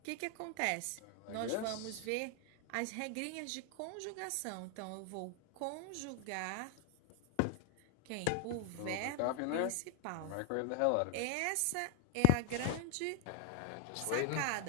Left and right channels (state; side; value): different; both; correlation 0.01